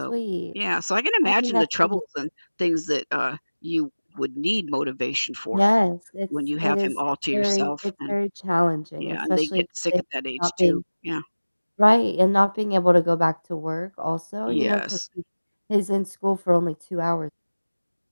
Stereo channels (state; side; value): inverted; both; correlation -1.00